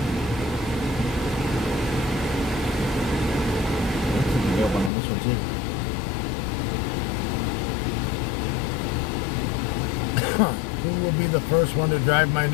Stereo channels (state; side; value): drops out; right; at 4.9 s